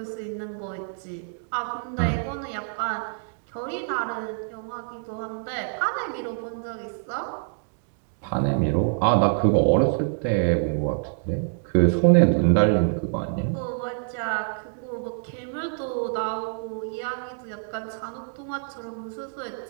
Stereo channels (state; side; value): silent; left; digital silence